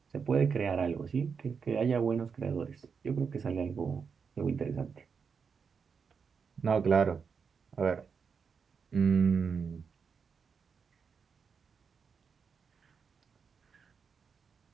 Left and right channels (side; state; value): left; quieter; 6.0 dB